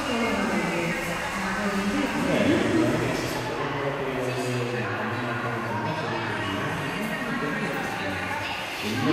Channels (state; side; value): identical; both; correlation 1.00